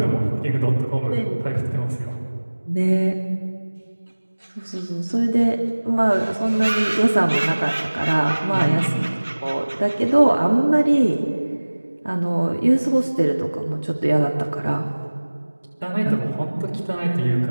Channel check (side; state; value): both; inverted; correlation -1.00